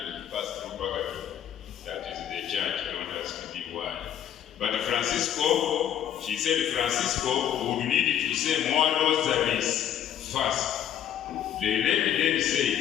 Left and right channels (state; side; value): quieter; right; 10.1 dB